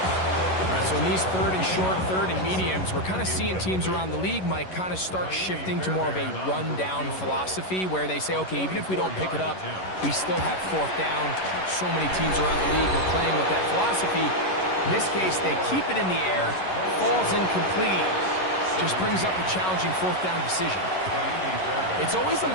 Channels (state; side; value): late; right; 11 ms